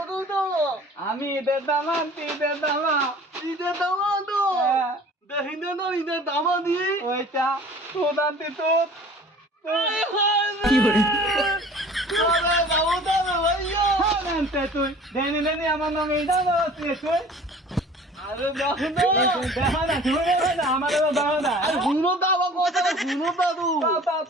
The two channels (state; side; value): normal; both; correlation 0.46